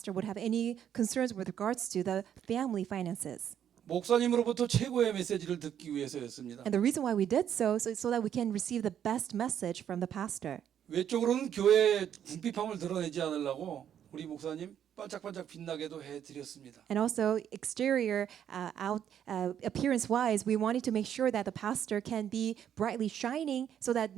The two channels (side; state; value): left; quieter; 9.5 dB